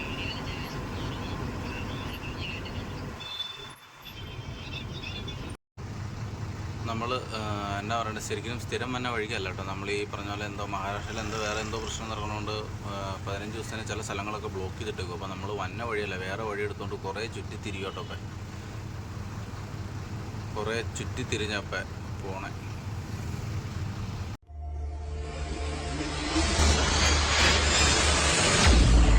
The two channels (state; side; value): identical; both; correlation 1.00